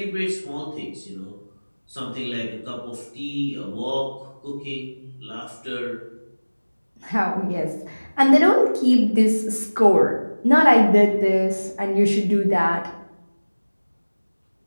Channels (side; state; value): both; inverted; correlation -1.00